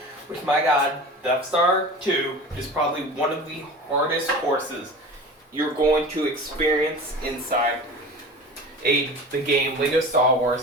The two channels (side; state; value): both; normal; correlation 0.35